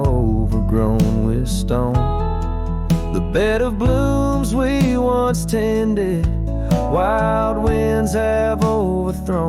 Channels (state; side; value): identical; both; correlation 1.00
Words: overgrown with stone. The bed of blooms we once tended, wild winds have